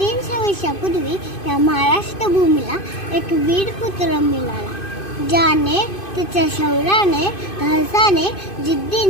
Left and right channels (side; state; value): right; late; 2.5 ms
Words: वर्षापूर्वी या महाराष्ट्र भूमीला एक वीर पुत्र मिळाला, ज्याने त्याच्या शौर्याने, धाडसाने,